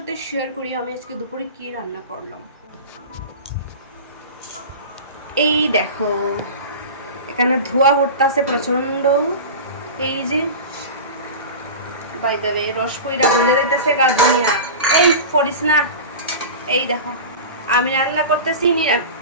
শেয়ার করি আমি আজকে দুপুরে কি রান্না করলাম। এই দেখো, এখানে ধোয়া উঠতেছে প্রচন্ড। এই যে বাই দ্য ওয়ে রস কইরা গলে যাইতেছে গার্ডেনিয়া। এই পড়িস না। এই দেখো আমি রান্না করতেছি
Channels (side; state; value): both; inverted; correlation -0.30